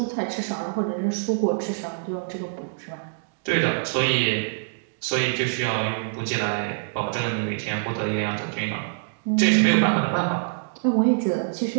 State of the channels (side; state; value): left; silent; digital silence